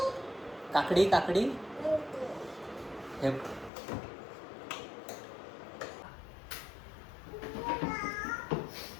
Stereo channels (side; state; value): right; drops out; at 3.7 s